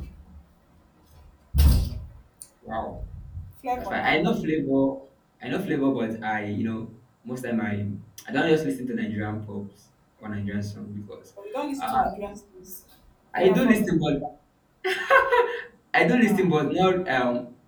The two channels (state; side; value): identical; both; correlation 1.00